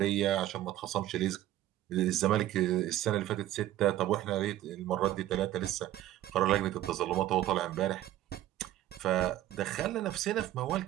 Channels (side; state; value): left; quieter; 13.9 dB